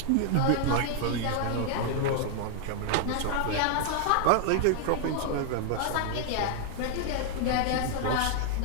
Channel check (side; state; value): both; different; correlation 0.00